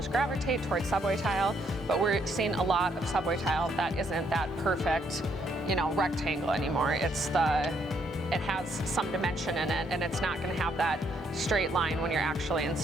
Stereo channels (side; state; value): both; normal; correlation 0.72